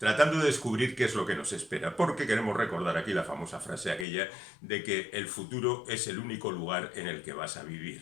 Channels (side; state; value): right; drops out; at 4.0 s